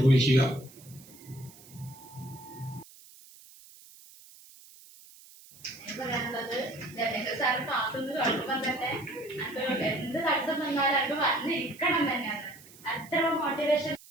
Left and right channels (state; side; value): noise; right; hiss, 22 dB below the sound